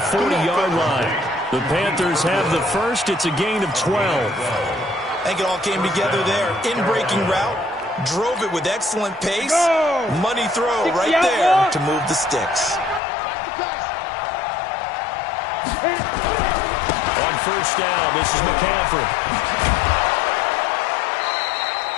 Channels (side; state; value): right; drops out; at 13.0 s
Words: 40-yard line. The Panthers have the first. It's a gain of 12. I think it all came together there. In-breaking route. Drove it with excellent pace. Money throw right there to move the sticks. On first down, this is McCaffrey.